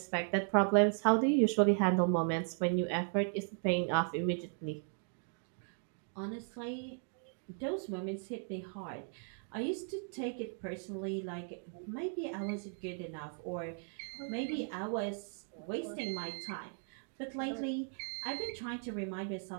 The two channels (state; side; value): silent; left; 53 dB below the other